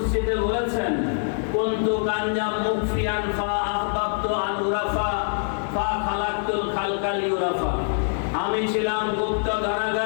বলেছেন, কুনতু কানজাম মুখফিয়ান ফা আহবাবতু আন উরাফা ফা খালাকতুল খালকা লিউরাফা। আমি ছিলাম গুপ্ত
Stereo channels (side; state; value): right; silent; digital silence